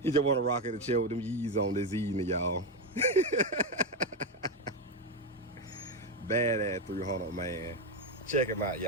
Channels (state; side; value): normal; both; correlation 0.09